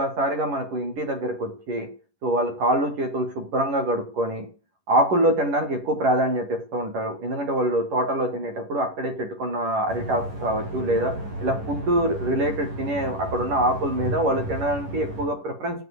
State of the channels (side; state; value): left; late; 11 ms